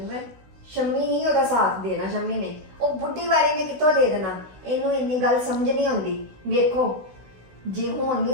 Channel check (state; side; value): late; left; 16 ms